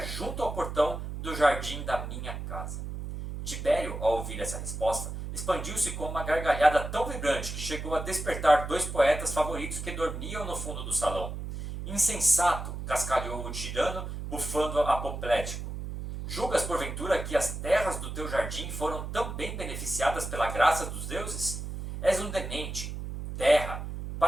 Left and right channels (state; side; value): noise; right; hum, 6 dB below the sound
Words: junto ao portão do jardim da minha casa. Tibério, ao ouvir essa resposta, expandiu-se com uma gargalhada tão vibrante que chegou a despertar 2 poetas favoritos que dormiam no fundo do salão. Insensato, cascalhou o tirano, bufando apoplético. Julgas, porventura, que as terras do teu jardim foram tão bem beneficiadas pela graça dos deuses? És um demente. Terra.